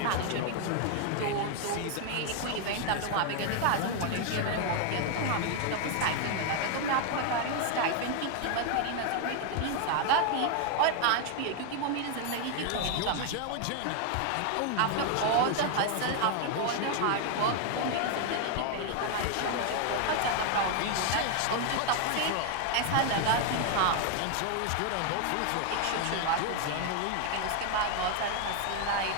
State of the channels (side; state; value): both; different; correlation 0.00